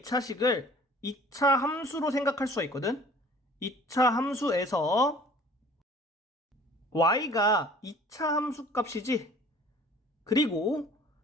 2차식을 2차 함수로 생각할 수가 있거든. 2차 함수에서 y가 2차 함수 값이지. 그리고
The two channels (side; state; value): both; normal; correlation 0.49